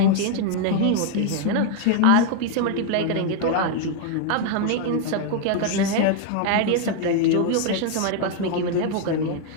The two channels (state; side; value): different; both; correlation 0.00